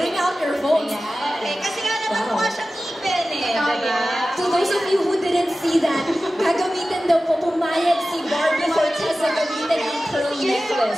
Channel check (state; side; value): normal; both; correlation 0.95